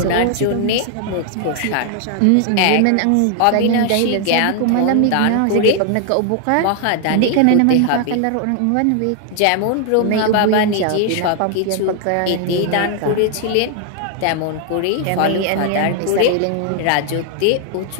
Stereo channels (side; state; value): both; different; correlation 0.00